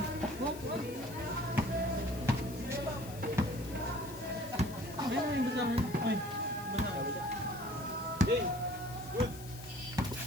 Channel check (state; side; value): noise; left; hiss, 16 dB below the sound